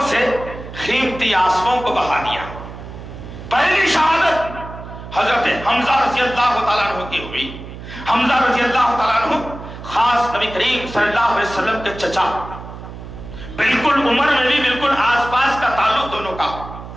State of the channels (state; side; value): noise; right; hum, 12 dB below the sound